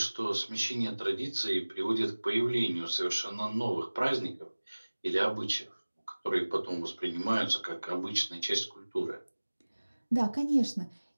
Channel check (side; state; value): both; inverted; correlation -1.00